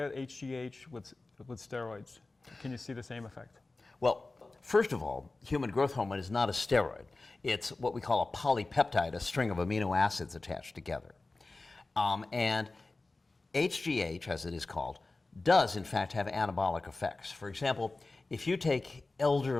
HGH with steroids? Can you see the same effect? Well, first of all, human growth hormone is not a steroid. It's what we call a polypeptide, a string of amino acids attached together. And HGH, as it is called, does in fact have anabolic effects. For example, if you take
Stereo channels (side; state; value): right; quieter; 3.3 dB